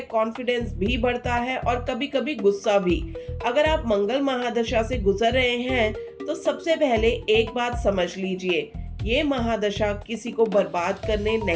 कॉन्फिडेंस भी बढ़ता है और कभी कभी गुस्सा भी। अगर आप मंगल महादशा से गुजर रहे हैं तो सबसे पहले एक बात समझ लीजिए, ये महादशा किसी को बर्बाद करने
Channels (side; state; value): both; identical; correlation 1.00